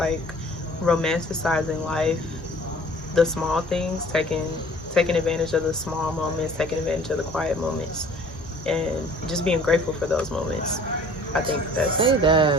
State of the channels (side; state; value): both; normal; correlation 0.51